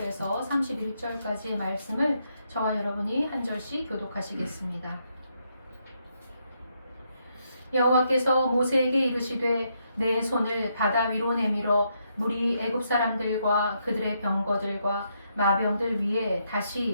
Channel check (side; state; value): both; inverted; correlation -0.78